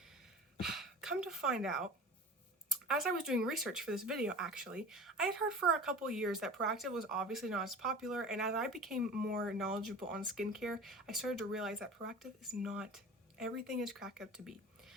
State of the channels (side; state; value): both; normal; correlation 0.37